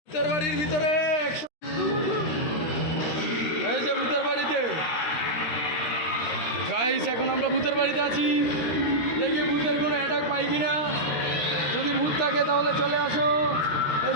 ভূতের বাড়ির ভিতরে এই যে ভূতের বাড়িতে গাইস, এখন আমরা ভূতের বাড়িতে আছি। দেখি ভূতের কোনো অ্যাটাক পাই কিনা। যদি ভূত থাকে তাহলে চলে আসো। এই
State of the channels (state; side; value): late; right; 13 ms